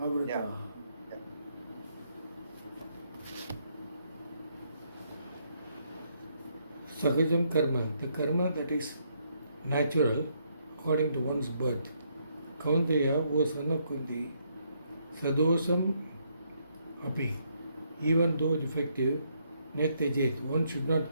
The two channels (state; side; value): inverted; both; correlation -0.74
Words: Yeah. Sahajam karma, the karma that is natural according to one's birth. Kaunteya, O son of Kunti, sadosham api, even though defective, netyajet, one should not